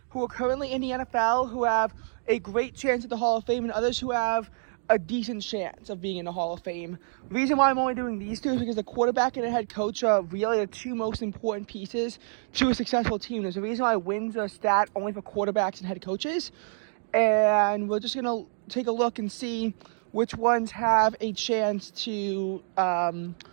who are currently in the NFL, who have a great chance at the Hall of Fame, and others who have a decent chance of being in the Hall of Fame. The reason why I'm only doing these two is because the quarterback and the head coach are really the two most important pieces to a successful team. There's a reason why wins are stat only for quarterbacks and head coaches, and we're just going to take a look and see which ones have a chance to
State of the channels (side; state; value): left; silent; digital silence